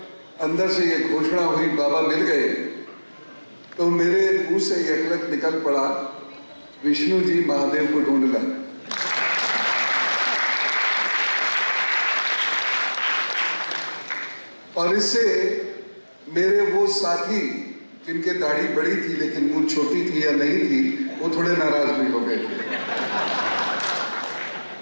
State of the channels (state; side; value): inverted; both; correlation -1.00